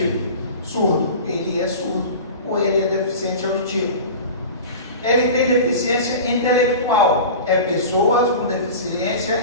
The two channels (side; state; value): both; inverted; correlation -0.34